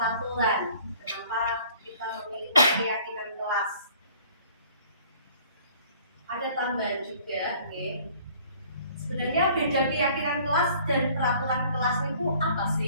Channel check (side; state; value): both; inverted; correlation -0.54